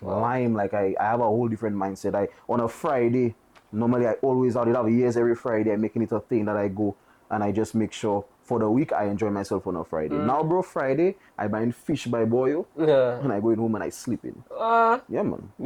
lime. Like I have a whole different mindset. On a Friday, normally I always out. It have years every Friday. I'm making it a thing that I go and I just make sure for the week I enjoy myself on a Friday. Now, bro, Friday I buying fish by boil Yeah. and I go in home and I sleep in. Yeah, man.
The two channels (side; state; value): both; identical; correlation 1.00